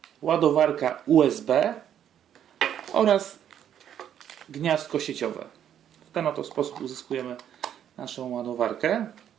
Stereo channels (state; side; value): quieter; left; 9.8 dB